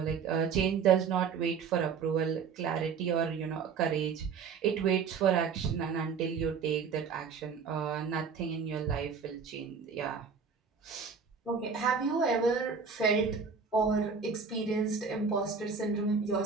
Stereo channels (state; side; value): quieter; left; 5.8 dB